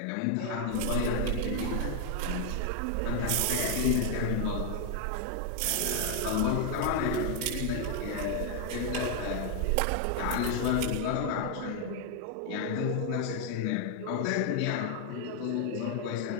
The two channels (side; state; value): both; different; correlation 0.00